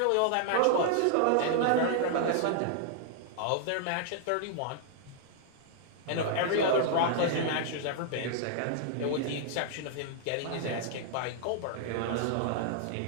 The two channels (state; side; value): different; both; correlation -0.01